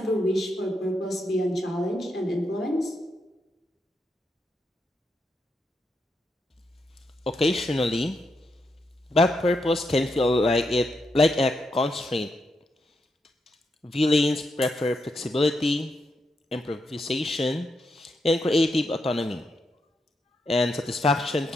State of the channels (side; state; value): both; normal; correlation 0.83